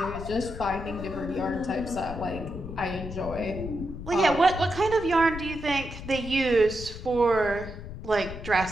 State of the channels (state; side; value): noise; left; rumble, 10 dB below the sound